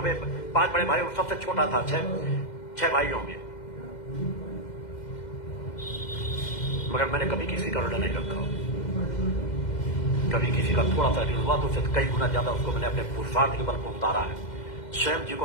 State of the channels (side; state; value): right; late; 2.1 ms